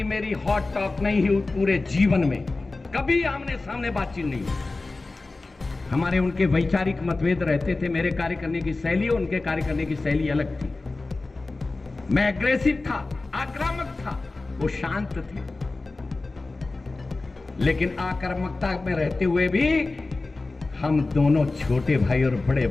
मेरी हॉट टॉक नहीं हुई पूरे जीवन में, कभी आमने सामने बातचीत नहीं हुई। हमारे उनके वैचारिक मतभेद रहते थे, मेरे कार्य करने की शैली उनके कार्य करने की शैली अलग थी। मैं एग्रेसिव था, आक्रामक था, वो शांत थे। लेकिन आक्रामकता में रहते हुए भी हम दोनों छोटे भाई और बड़े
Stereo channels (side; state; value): right; quieter; 3.4 dB